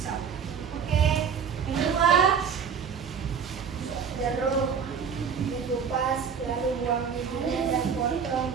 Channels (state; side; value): quieter; left; 6.8 dB